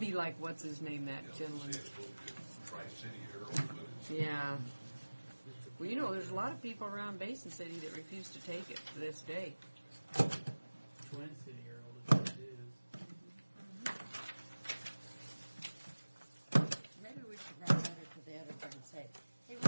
like, what's his name, that gentleman? Tri-City Herald, but it's Yeah. Well, there's a lot of people around Basin City that refuse to take it to this day. Twin City Herald is what it is. Maybe we should write a letter to the editor and say, hey, we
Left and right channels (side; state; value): both; inverted; correlation -1.00